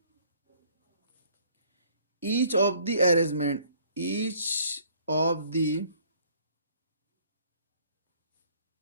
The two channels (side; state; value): both; inverted; correlation -0.59